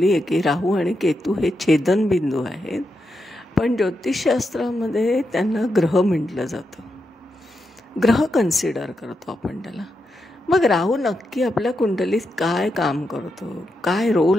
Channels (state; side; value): normal; both; correlation 0.85